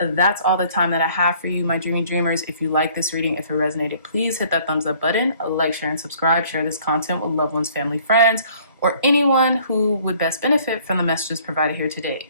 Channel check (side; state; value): both; inverted; correlation -0.57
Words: all the time that I have for you, my dreamy dreamers. If you like this reading, if it resonated, please hit that thumbs up button, like, share, and subscribe. Share this content with loved ones, family, friends, or anyone who would best benefit from the messages provided here today.